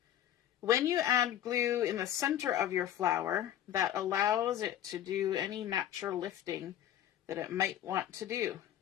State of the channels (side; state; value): right; quieter; 11.5 dB